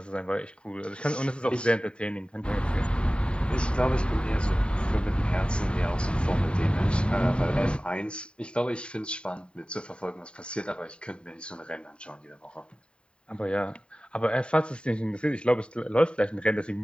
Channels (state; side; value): late; right; 0.053 ms